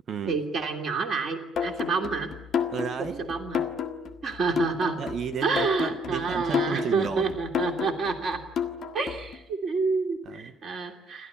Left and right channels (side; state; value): both; normal; correlation 0.64